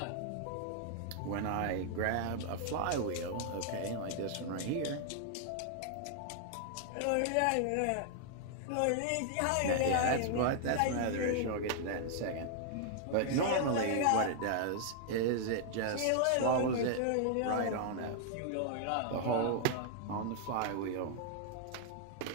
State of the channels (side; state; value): both; different; correlation -0.01